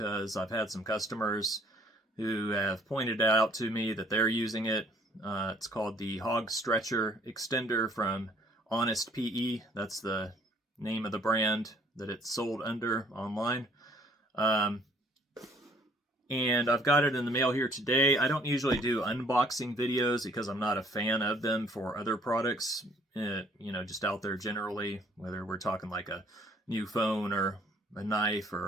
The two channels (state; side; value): normal; both; correlation 0.60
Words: I've had some customers who have pointed out to me that they're using it. It's called the Hog Stretcher Extender from Honest PE. That's the name of the brand that it's sold under online. And I've got it in the mail here today. I don't usually do unboxing videos because I'm not a fan of them for other products, just out there generally, whether we're talking like a new phone or a knife